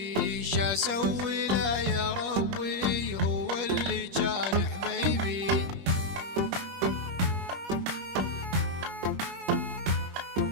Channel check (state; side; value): late; left; 21 ms